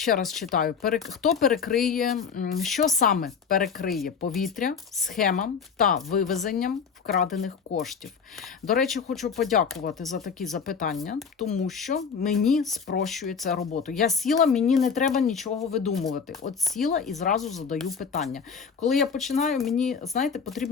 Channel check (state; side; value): quieter; right; 6.2 dB